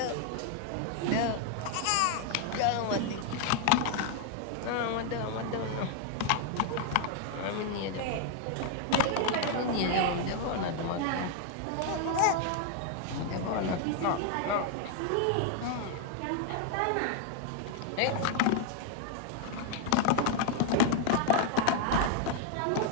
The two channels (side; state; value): both; different; correlation 0.00